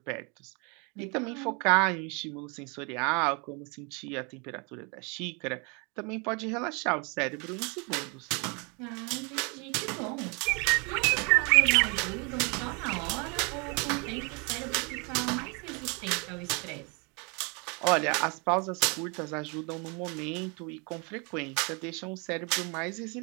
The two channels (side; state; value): left; quieter; 32.6 dB